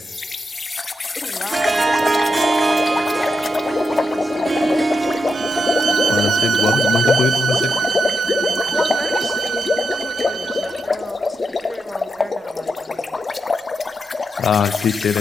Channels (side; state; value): both; normal; correlation 0.85